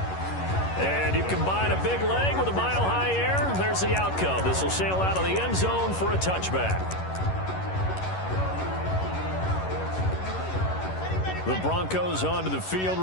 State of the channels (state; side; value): late; right; 11 ms